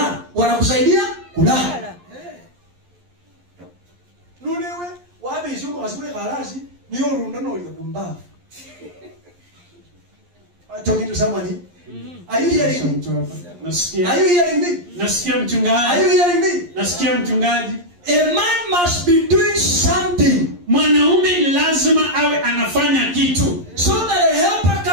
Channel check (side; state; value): left; late; 11 ms